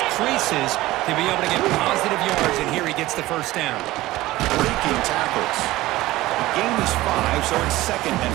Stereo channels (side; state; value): left; quieter; 17.5 dB